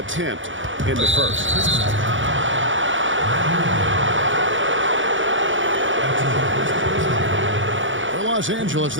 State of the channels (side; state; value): left; late; 0.56 ms